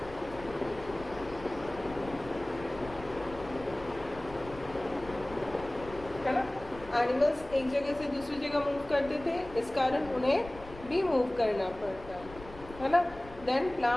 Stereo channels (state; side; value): noise; left; rumble, 16 dB below the sound